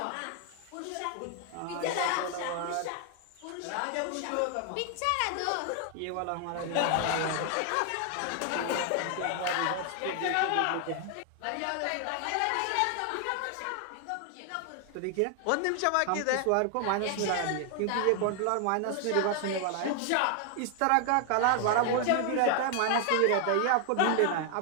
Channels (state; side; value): different; both; correlation 0.00